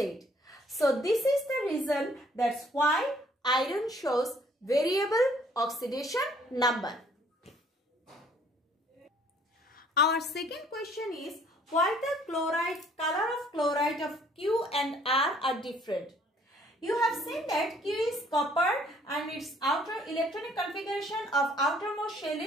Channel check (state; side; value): normal; both; correlation 0.61